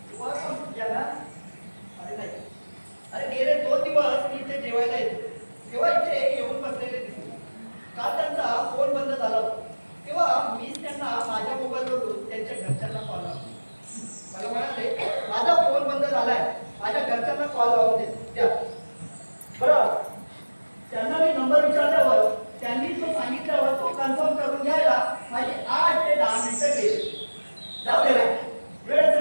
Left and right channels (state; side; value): inverted; both; correlation -1.00